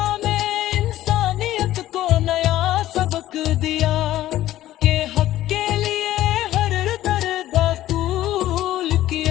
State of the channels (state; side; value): quieter; right; 14.1 dB